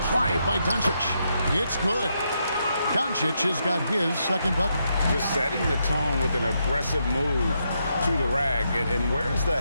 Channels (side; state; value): both; inverted; correlation -0.80